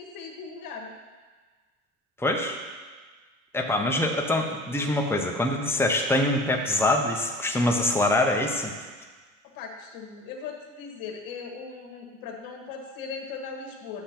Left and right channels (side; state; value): both; normal; correlation 0.41